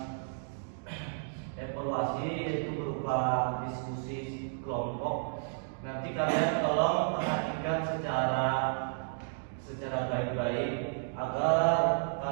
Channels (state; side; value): silent; left; digital silence